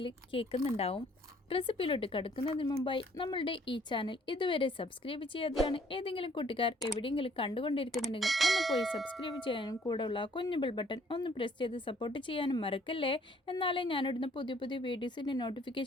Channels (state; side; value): normal; both; correlation 0.61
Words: കേൾക്കുന്നുണ്ടാവും. റെസിപ്പിയിലോട്ട് കടക്കുന്നതിന് മുമ്പായി നമ്മളുടെ ഈ ചാനൽ ഇതുവരെ സബ്സ്ക്രൈബ് ചെയ്യാതെയാണ് ഏതെങ്കിലും കൂട്ടുകാർ എവിടെയെങ്കിലും കണ്ടുകൊണ്ടിരിക്കുന്നുണ്ടെങ്കിൽ ഒന്ന് പോയി സബ്സ്ക്രൈബ് ചെയ്യാനും കൂടെയുള്ള കുഞ്ഞു ബെൽ ബട്ടൺ ഒന്ന് പ്രസ് ചെയ്ത് സപ്പോർട്ട് ചെയ്യാനും മറക്കല്ലേ. എന്നാലേ ഞാനിടുന്ന പുതിയ പുതിയ വീഡിയോസിൻ്റെ